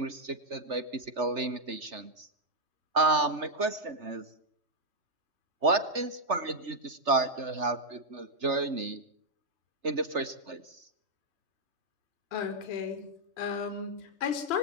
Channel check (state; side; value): late; left; 3.3 ms